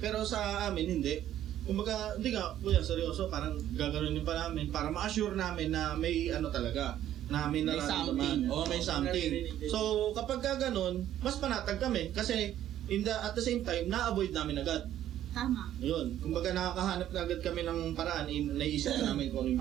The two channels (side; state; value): left; quieter; 11.9 dB